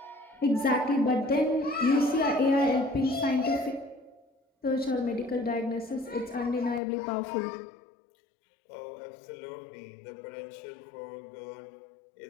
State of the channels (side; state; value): right; drops out; at 6.8 s